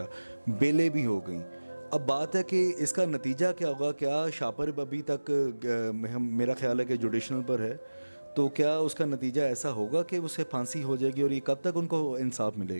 بیلیں بھی ہو گئیں۔ اب بات ہے کہ اس کا نتیجہ کیا ہوگا؟ کیا شاپر ابھی تک میرا خیال ہے کہ جوڈیشنل پر ہے، تو کیا اس کا نتیجہ ایسا ہوگا کہ اسے پھانسی ہو جائے گی، اور یہ کب تک ان کو انصاف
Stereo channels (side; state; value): both; inverted; correlation -1.00